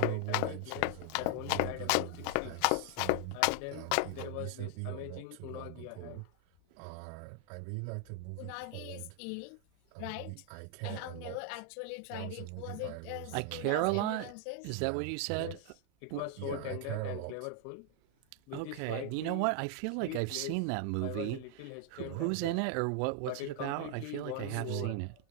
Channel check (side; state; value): both; different; correlation 0.00